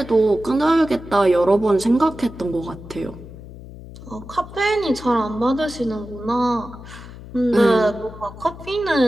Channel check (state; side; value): noise; left; hum, 15 dB below the sound